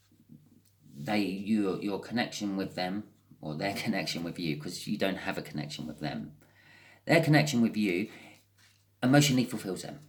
Your connection with them, or their connection with you, because you don't have a connection with them. Their connection with you emotionally fulfills them.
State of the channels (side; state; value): both; identical; correlation 1.00